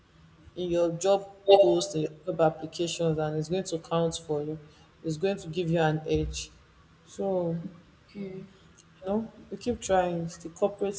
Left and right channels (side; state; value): both; identical; correlation 1.00